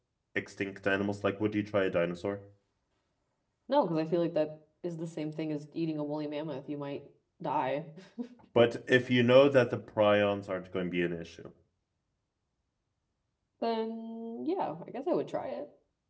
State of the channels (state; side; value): identical; both; correlation 1.00